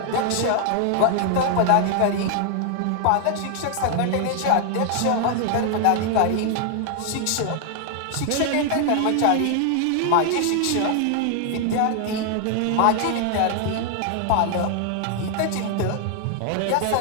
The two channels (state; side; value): different; both; correlation 0.00